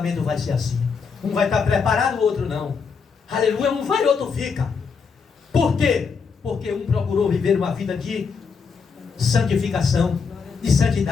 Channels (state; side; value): quieter; right; 5.6 dB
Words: vai ser assim. Um vai estar preparado, o outro não. Aleluia, um vai, o outro fica. Por quê? Porque um procurou viver uma vida de santificação, de